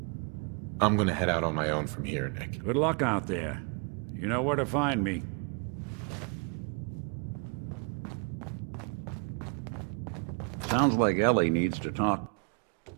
I'm gonna head out on my own from here, Nick. Good luck out there. You know where to find me. Sounds like Ellie needs to talk.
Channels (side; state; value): left; quieter; 35.8 dB